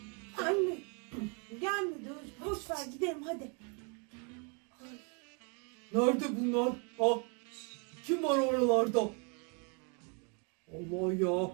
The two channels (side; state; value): left; quieter; 36.0 dB